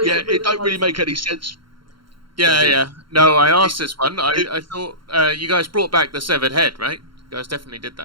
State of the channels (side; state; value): left; late; 0.73 ms